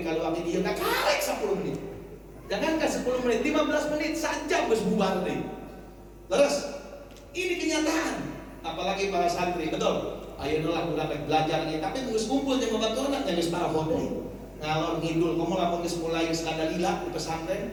kalau abdi dia tak karek 10 menit, jangankan 10 menit, 15 menit saja harus bubar deh. Terus ini kenyataan, apalagi para santri, betul. Ayo lah udah belajar nih, tapi terus kumpul jeung babaturan yang geus paraho deui. Ngalor ngidul, kamu lamun geus mulai skandalila di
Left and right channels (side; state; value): both; identical; correlation 1.00